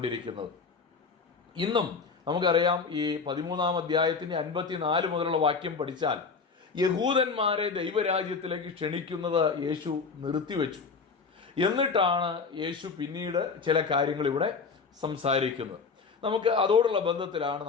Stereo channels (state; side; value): quieter; right; 5.0 dB